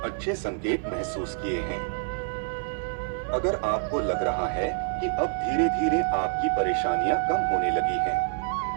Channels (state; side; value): silent; left; digital silence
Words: अच्छे संकेत महसूस किए हैं, अगर आपको लग रहा है कि अब धीरे धीरे आपकी परेशानियां कम होने लगी